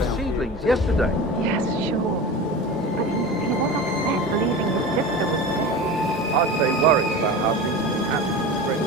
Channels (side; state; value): both; normal; correlation 0.30